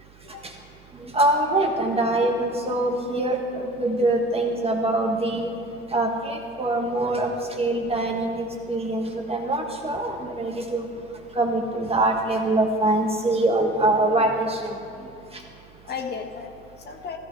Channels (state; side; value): noise; right; hum, 25 dB below the sound